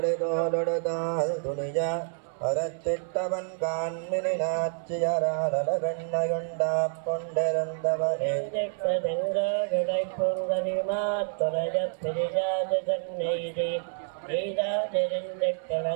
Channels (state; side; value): silent; left; 59 dB below the other